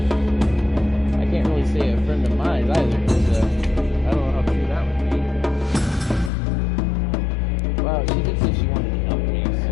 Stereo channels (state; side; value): drops out; right; at 6.3 s